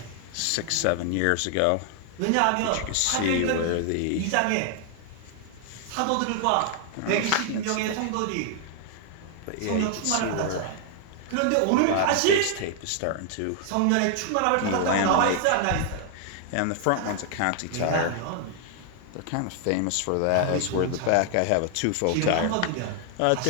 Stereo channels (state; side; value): different; both; correlation 0.00